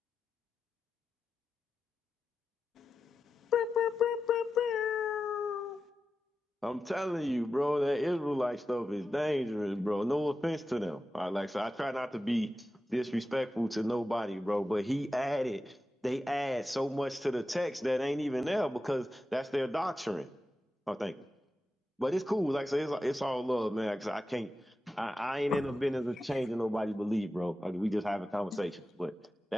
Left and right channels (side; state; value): both; normal; correlation 0.92